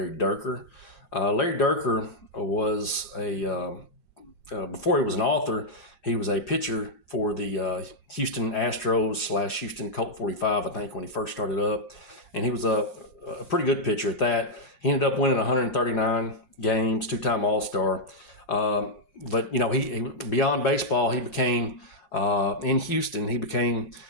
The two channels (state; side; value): late; right; 5.6 ms